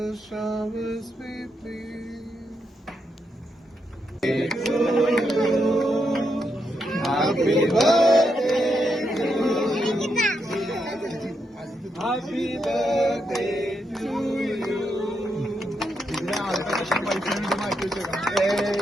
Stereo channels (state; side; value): normal; both; correlation 0.81